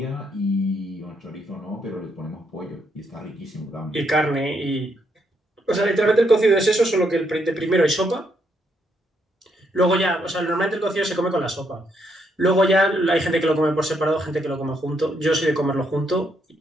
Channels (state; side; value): normal; both; correlation 0.76